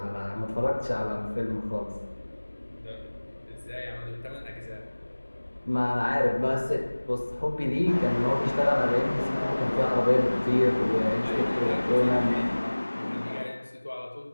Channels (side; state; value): both; inverted; correlation -1.00